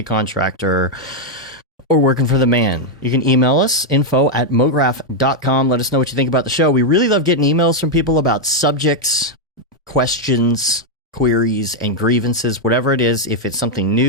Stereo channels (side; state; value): both; normal; correlation -0.01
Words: contractor, or working for the man. You can email us, info@mograph.com. Let us know what you think about the show. We really love getting emails from people about subjects, questions, queries, and grievances, whatever it is. If it's something